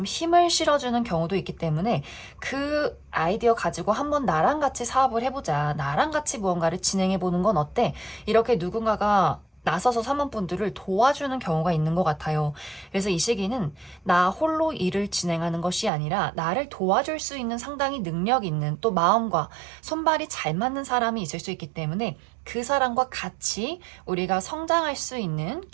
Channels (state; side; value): drops out; left; at 15.9 s